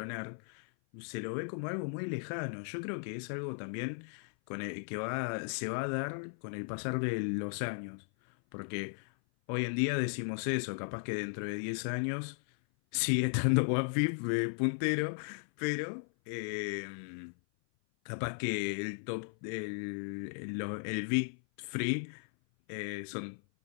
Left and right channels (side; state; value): right; silent; 54 dB below the other